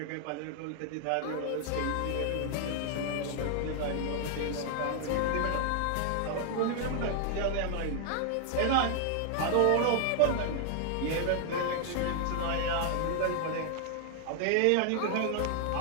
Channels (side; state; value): both; different; correlation 0.00